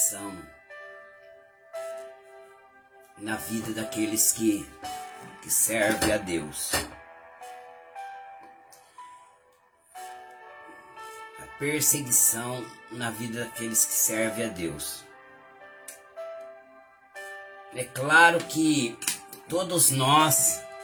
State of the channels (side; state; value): both; identical; correlation 1.00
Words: na vida daqueles que servem a Deus. A perseguição na vida daqueles que servem a Deus. É claro que todos nós